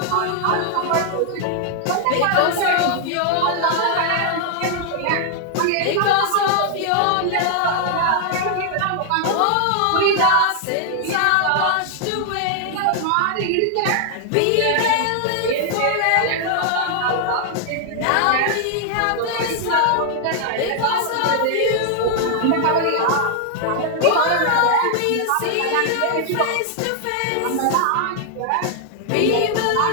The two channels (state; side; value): different; both; correlation 0.00